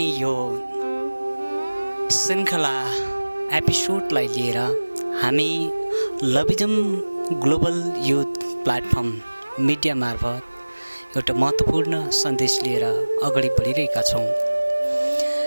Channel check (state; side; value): inverted; both; correlation -1.00